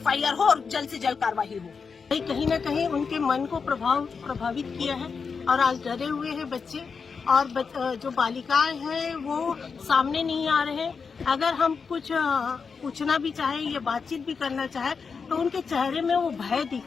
हो और जल्द से जल्द कार्रवाई हो। कहीं न कहीं उनके मन को प्रभावित किया है और आज डरे हुए हैं बच्चे और जो बालिकाएं हैं वो सामने नहीं आ रहे हैं। अगर हम कुछ पूछना भी चाहे या बातचीत भी करना चाहे तो उनके चेहरे में वो भय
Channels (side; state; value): right; quieter; 5.4 dB